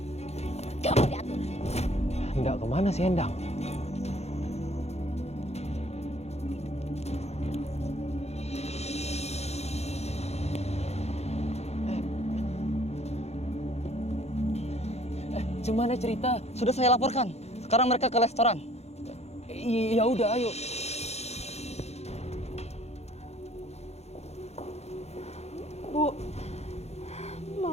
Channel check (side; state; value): right; late; 0.31 ms